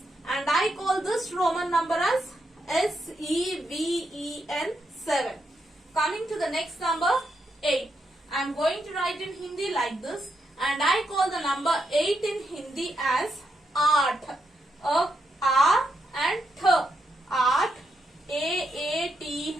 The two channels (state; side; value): normal; both; correlation 0.81